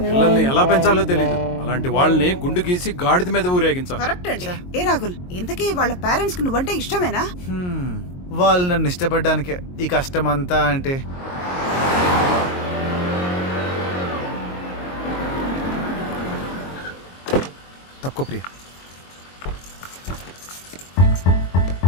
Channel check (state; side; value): late; right; 22 ms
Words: పిల్లల్ని ఎలా పెంచాలో తెలియదు. అలాంటి వాళ్ళని గుండు గీసి గాడిద మీద ఊరేగించాలి. కరెక్ట్ అండి. ఏ రాహుల్, ఇంతకీ వాళ్ళ పేరెంట్స్ కి నువ్వంటే ఇష్టమేనా? వాళ్ళు నన్ను ఇష్టపడ్డానికే ఈ కష్టం అంతా. అంటే తప్పుకో ప్రియ.